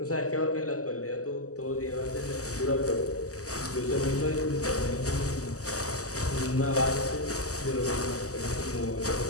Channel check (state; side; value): late; right; 0.66 ms